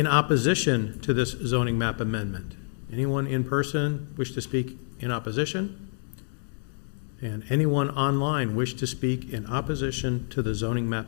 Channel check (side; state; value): right; silent; digital silence